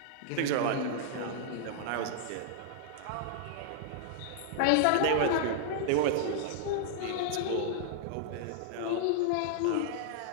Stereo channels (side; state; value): both; different; correlation -0.01